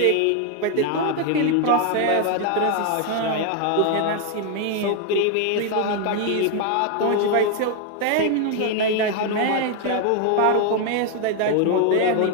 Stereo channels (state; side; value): different; both; correlation 0.00